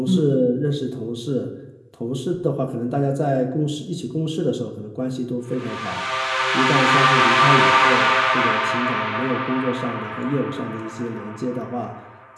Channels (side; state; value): both; identical; correlation 1.00